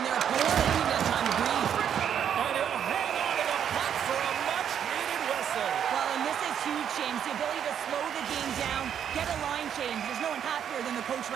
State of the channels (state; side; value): quieter; left; 8.8 dB